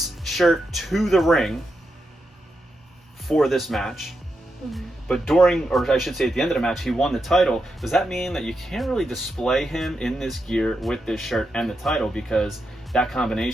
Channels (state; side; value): normal; both; correlation 0.85